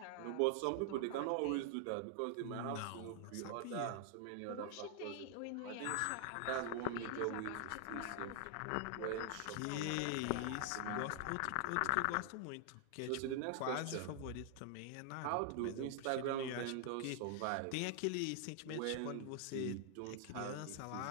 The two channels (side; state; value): both; different; correlation 0.00